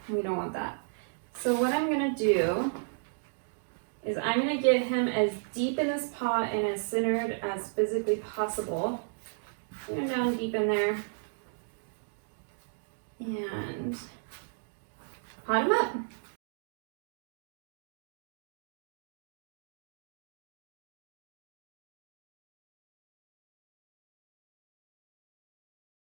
we don't want that. So what I'm gonna do is I'm gonna get him as deep in this pot and as centered as physically possible. Put him down deep in there and pot him up.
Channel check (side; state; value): left; silent; digital silence